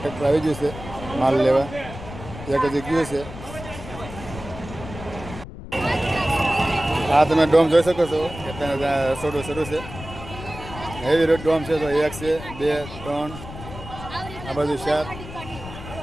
ટ્રેક્ટર આવી ગયું છે માલ લેવા એક હજી ગયું છે. આ તમે ડોમ જોઈ શકો છો કે ત્યાં રસોડું શરૂ છે. હેવી રોડ ડોમ છે તો 1 છે 2 3 આ બાજુ 4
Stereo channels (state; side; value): noise; left; rumble, 12 dB below the sound